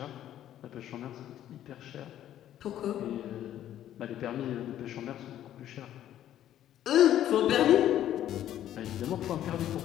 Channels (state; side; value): quieter; right; 11.7 dB